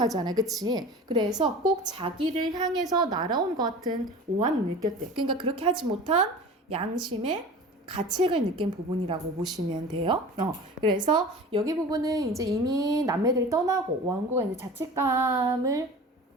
그치? 그래서 꼭 자기를 향해서 날아온 것 같은 오한을 느꼈대. 그러니까 그렇게 하지 못한 양심의 가책을 느낀 부분이라고 보시면 돼요. 그래서 여기 부분은 이제 이미 남매들이 떠나고 원고가 이제 자책감을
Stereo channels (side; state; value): both; normal; correlation 0.37